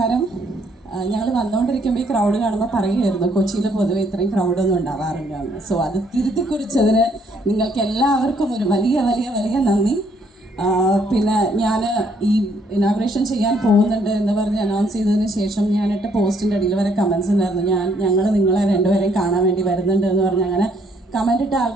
ഞങ്ങൾ വന്നുകൊണ്ടിരിക്കുമ്പോൾ ഈ ക്രൗഡ് കാണുമ്പോൾ പറയുമായിരുന്നു കൊച്ചിയിൽ പൊതുവെ ഇത്രയും ക്രൗഡൊന്നും ഉണ്ടാവാറില്ല. സോ അത് തിരുത്തി കുറിച്ചതിന് നിങ്ങൾക്ക് എല്ലാവർക്കും ഒരു വലിയ നന്ദി. പിന്നെ ഞാൻ ഈ ഇനാഗ്രേഷൻ ചെയ്യാൻ പോകുന്നുണ്ട് എന്ന് പറഞ്ഞ് അനൗൺസ് ചെയ്തതിന് ശേഷം ഞാനിട്ട പോസ്റ്റിൻ്റെ അടിയിൽ വരെ കമൻസ് ഉണ്ടായിരുന്നു. ഞങ്ങൾ നിങ്ങളെ രണ്ടുപേരെയും കാണാൻ വേണ്ടി വരുന്നുണ്ട് എന്ന് പറഞ്ഞ് അങ്ങനെ കമൻ്റ് ഇട്ട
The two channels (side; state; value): both; normal; correlation 0.68